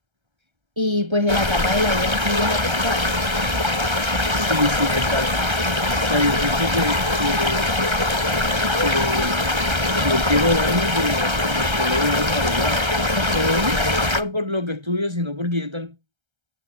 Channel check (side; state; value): left; late; 1.3 ms